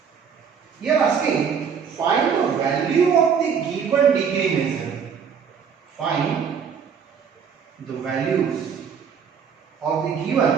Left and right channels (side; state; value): left; quieter; 6.8 dB